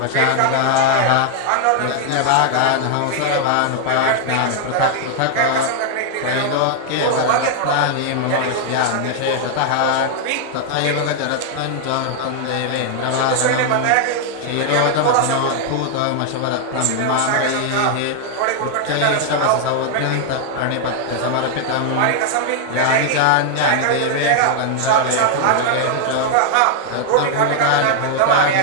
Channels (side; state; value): both; different; correlation 0.00